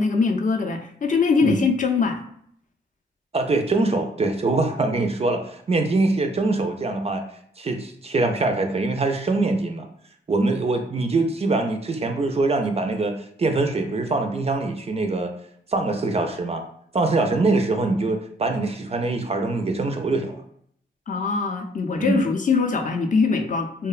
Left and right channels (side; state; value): both; normal; correlation 0.63